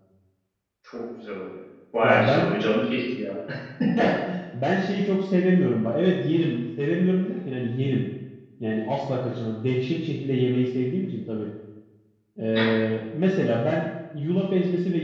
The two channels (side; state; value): both; identical; correlation 1.00